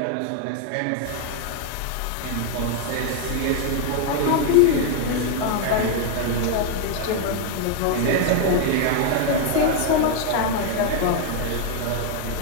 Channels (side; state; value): both; different; correlation 0.00